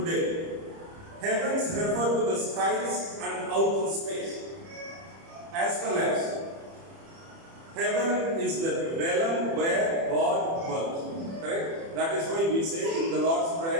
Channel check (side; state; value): left; late; 30 ms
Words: heavens refer to the skies and outer space, as well as heaven is the realm where God dwells. Correct? That is why we say in the Lord's